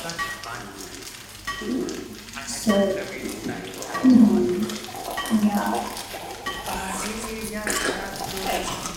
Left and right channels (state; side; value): identical; both; correlation 1.00